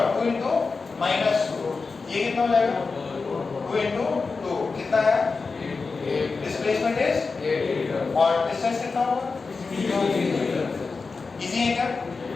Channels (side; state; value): right; quieter; 4.4 dB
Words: 2 इंटू -2, ये कितना हो जाएगा? 2 इंटू 2 कितना है? डिस्प्लेसमेंट इज, और डिस्टेंस कितना होगा? इजी है क्या?